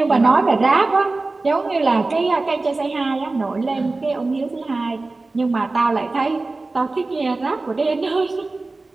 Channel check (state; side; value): quieter; left; 3.4 dB